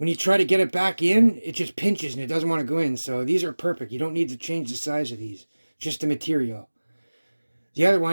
you try to get it back in, it just pinches and it doesn't want to go in. So these are perfect. You don't need to change the size of these, just the material. The other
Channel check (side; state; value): both; inverted; correlation -1.00